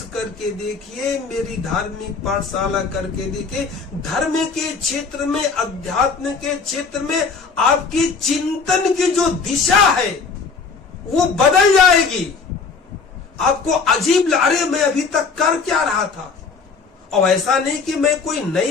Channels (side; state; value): right; quieter; 4.9 dB